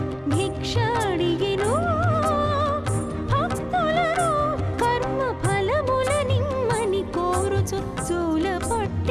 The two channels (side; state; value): both; identical; correlation 1.00